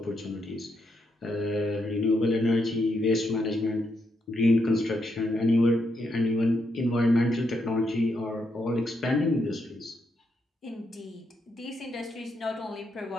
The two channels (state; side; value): normal; both; correlation 0.80